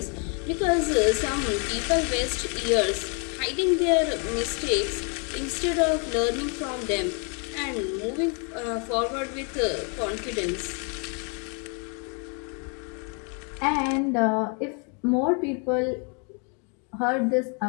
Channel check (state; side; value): quieter; right; 37.5 dB